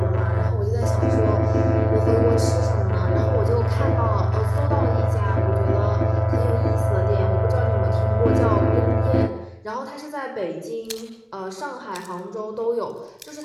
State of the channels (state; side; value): identical; both; correlation 1.00